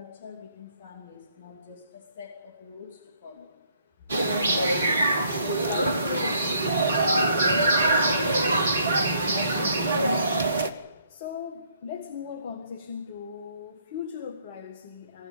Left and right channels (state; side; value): inverted; both; correlation -0.66